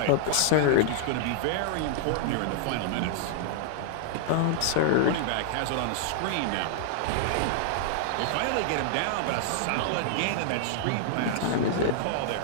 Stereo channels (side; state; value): both; different; correlation -0.01